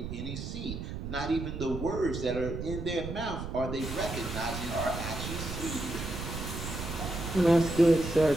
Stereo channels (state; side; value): noise; right; rumble, 6 dB below the sound